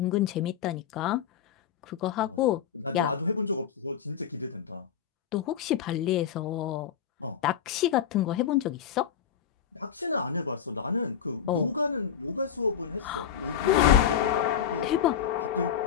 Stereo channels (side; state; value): right; quieter; 8.5 dB